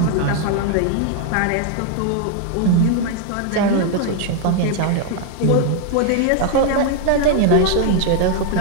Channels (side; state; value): both; different; correlation 0.00